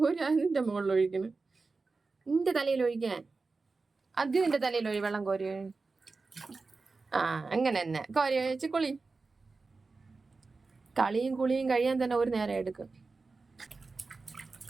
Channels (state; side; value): quieter; left; 4.0 dB